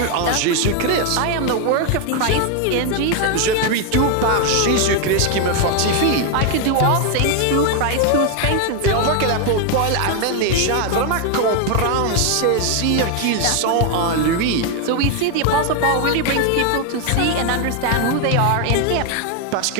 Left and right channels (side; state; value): both; different; correlation 0.01